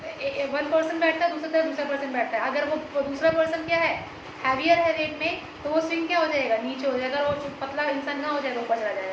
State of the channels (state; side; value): identical; both; correlation 1.00